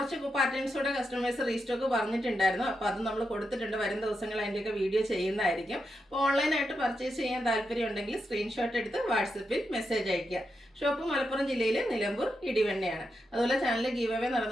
പാറ്റേൺസോടെ കസ്റ്റമേഴ്സ് റീസ്റ്റോക്ക് പറഞ്ഞിട്ടുണ്ടായിരുന്നു. അപ്പോൾ അത് നമ്മൾ കൊടുത്തിട്ടുണ്ട്. വരും ദിവസങ്ങൾ അതിൻ്റെയൊക്കെ വീഡിയോ ചെയ്യുന്നതായിരിക്കും. അപ്പോൾ ഓൺലൈനായിട്ട് പർച്ചേസ് ചെയ്യാൻ താല്പര്യം ഉണ്ടെങ്കിൽ സ്ക്രീൻഷോട്ട് എടുത്ത് വാട്സപ്പിൽ മെസ്സേജ് അയയ്ക്കുക. ഷോപ്പ് മലപ്പുറം ജില്ലയിൽ നിലമ്പൂർ ഇടിവണ്ണയാണ്. അതുപോലെ ചാനൽ ഗീവ് അവേ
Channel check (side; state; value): both; normal; correlation 0.86